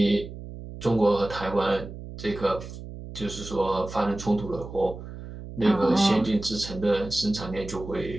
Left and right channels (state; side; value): noise; right; hum, 12 dB below the sound